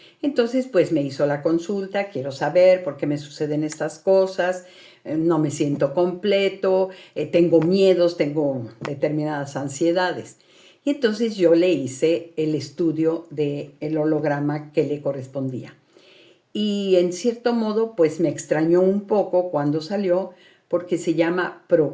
Entonces, pues me hizo la consulta, quiero saber por qué me suceden estas cosas, no me siento completo, tengo miedos, tengo determinadas ansiedades. Y entonces yo le hice el estudio del holograma que le correspondía. Y en cierto modo, pues me extrañó un poco cuando salió, porque se llama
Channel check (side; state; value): both; identical; correlation 1.00